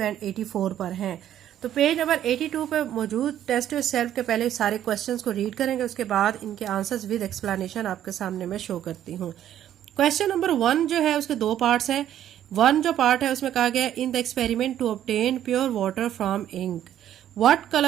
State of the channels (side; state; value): left; quieter; 11.2 dB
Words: 84 पर हैं। तो पेज नंबर 82 पे मौजूद टेस्ट योर सेल्फ के पहले सारे क्वेश्चंस को रीड करेंगे, उसके बाद इनके आंसर्स विद एक्सप्लेनेशन आपके सामने मैं शो करती हूँ। क्वेश्चन नंबर 1 जो है उसके दो पार्ट्स हैं। 1 जो पार्ट है उसमें कहा गया है in the experiment to obtain pure water from ink what